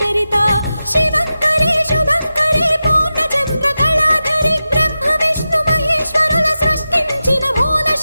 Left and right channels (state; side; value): inverted; both; correlation -0.92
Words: చరిత శివంకరి శుభంకరి పూర్ణ చంద్ర కళాధరి బ్రహ్మ విష్ణు మహేశ్వరుల సృష్టించిన మూల